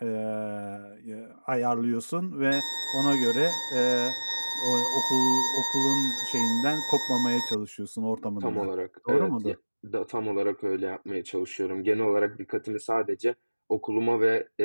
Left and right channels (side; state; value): both; inverted; correlation -1.00